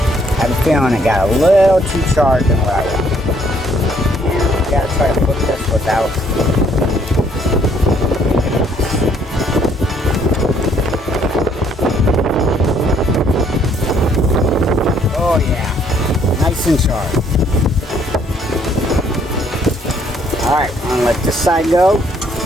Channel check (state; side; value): normal; both; correlation 0.65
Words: I have a feeling it got a little too charged than what I want. You gotta try to flip this without. Oh yeah, nice and sharp. Alright, I'm gonna let this side go.